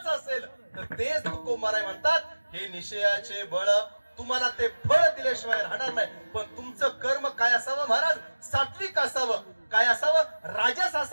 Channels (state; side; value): inverted; both; correlation -1.00